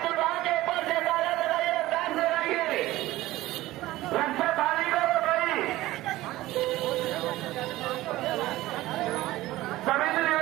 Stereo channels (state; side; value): quieter; left; 17.0 dB